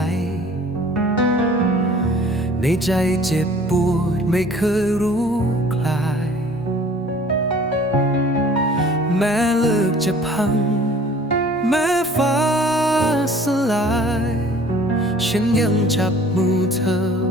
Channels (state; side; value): normal; both; correlation 0.51